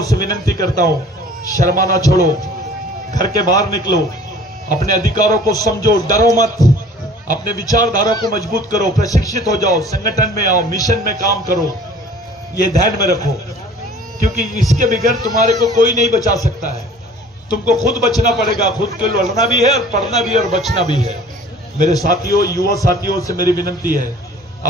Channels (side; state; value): both; normal; correlation 0.49